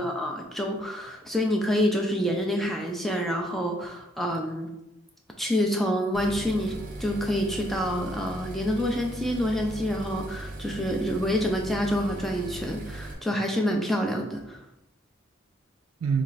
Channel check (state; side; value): normal; both; correlation 0.71